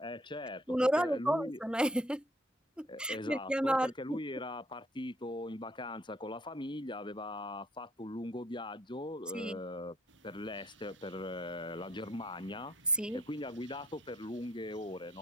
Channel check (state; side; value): normal; both; correlation 0.66